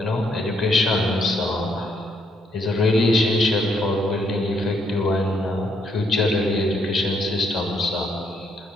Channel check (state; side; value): normal; both; correlation 0.73